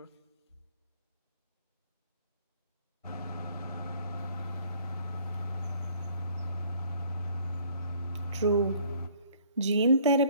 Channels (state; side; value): inverted; both; correlation -0.58